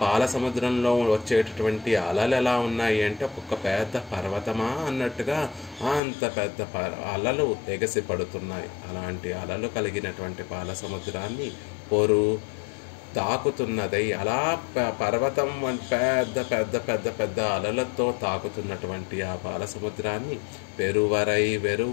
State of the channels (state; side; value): drops out; right; at 6.0 s